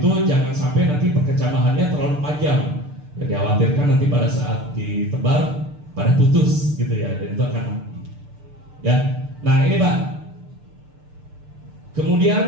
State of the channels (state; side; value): late; left; 6.7 ms